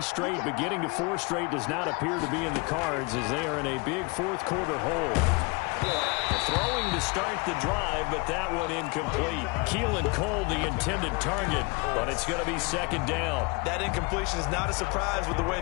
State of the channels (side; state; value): right; quieter; 28.8 dB